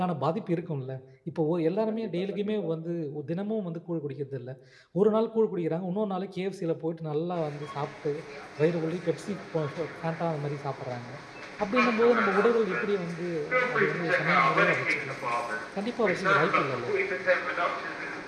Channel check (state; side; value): identical; both; correlation 1.00